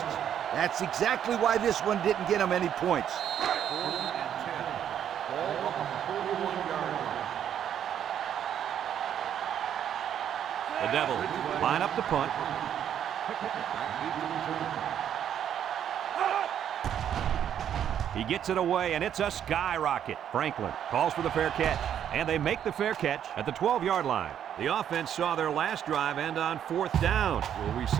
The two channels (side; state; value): left; quieter; 9.6 dB